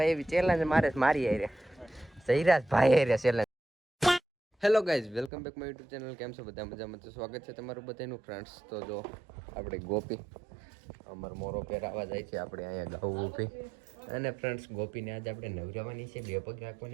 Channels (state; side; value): drops out; left; at 5.3 s